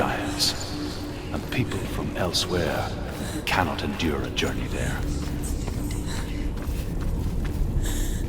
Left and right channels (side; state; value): both; identical; correlation 1.00